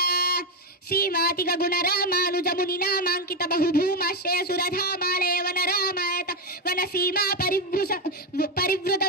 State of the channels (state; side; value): normal; both; correlation 0.08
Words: శ్రీమాతిగ గుణ రామానుజముని నామాంకిత బహుభూమాశ్రయ సురధామాలయ వన రామాయత వన సీమా పరివృత